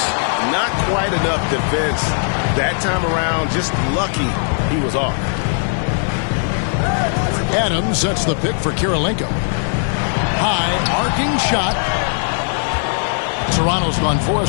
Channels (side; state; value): right; silent; 55 dB below the other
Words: Not quite enough defense that time around. Just lucky he was off. Adams sets the pick for Kirilenko. High arcing shot. Toronto's gone 4 of